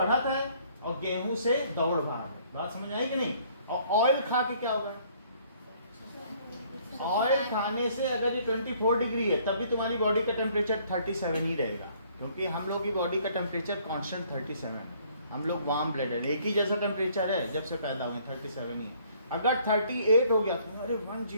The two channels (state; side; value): inverted; both; correlation -0.61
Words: है और गेहूं से दौड़ भाग है। बात समझ आई कि नहीं? और ऑयल खा के क्या होगा? ऑयल खाने से अगर ये 24 डिग्री है, तब भी तुम्हारी बॉडी का टेम्परेचर 37 ही रहेगा, क्योंकि हम लोग की बॉडी का टेम्परेचर कांस्टेंट 37 है। हम लोग वार्म ब्लडेड, एक ही जैसा टेम्परेचर है जब से पैदा हुए, 37 ही है। अगर 38 हो गया तो अरे